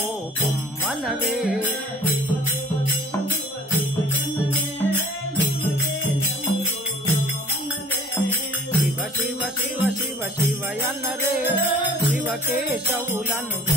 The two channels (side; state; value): both; normal; correlation 0.50